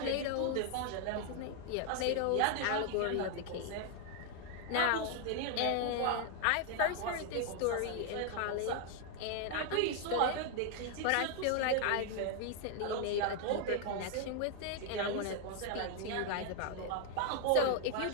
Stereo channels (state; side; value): different; both; correlation 0.00